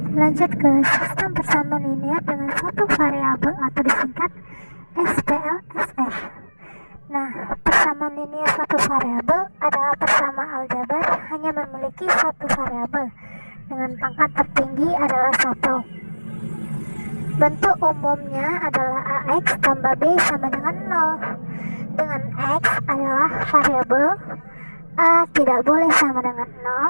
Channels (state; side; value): inverted; both; correlation -1.00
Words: lanjut ke sistem persamaan linear dengan satu variabel atau disingkat SPLSF. Nah, persamaan linear satu variabel adalah persamaan aljabar hanya memiliki satu variabel dengan pangkat tertinggi adalah 1. Bentuk umumnya adalah AX tambah B sama dengan 0. Dengan X adalah variabel, A tidak boleh sama dengan